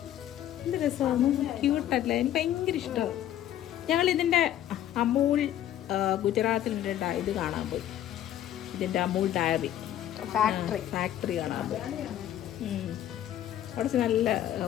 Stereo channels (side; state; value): right; quieter; 11.8 dB